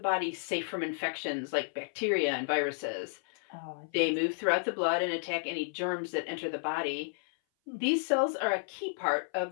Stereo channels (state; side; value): silent; right; 56 dB below the other